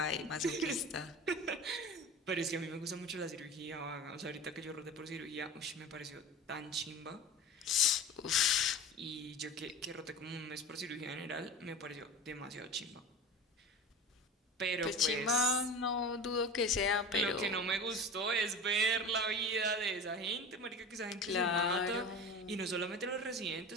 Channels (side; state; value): both; normal; correlation 0.33